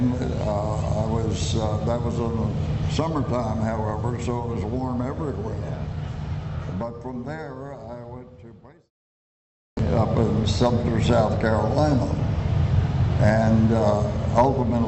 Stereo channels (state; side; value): identical; both; correlation 1.00